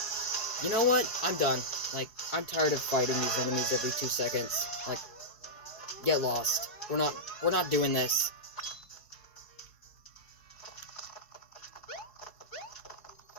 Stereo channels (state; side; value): late; right; 4.6 ms